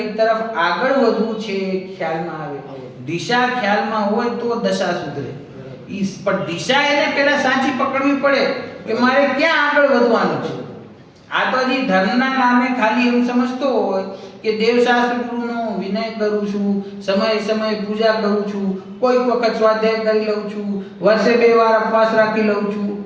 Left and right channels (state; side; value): identical; both; correlation 1.00